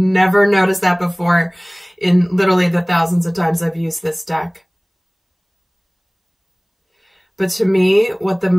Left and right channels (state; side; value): identical; both; correlation 1.00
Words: noticed that before in literally the thousands of times I've used this deck. But to me, what